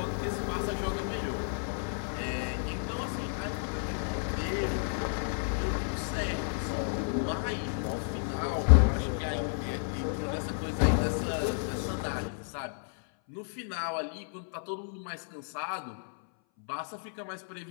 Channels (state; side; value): silent; right; 56 dB below the other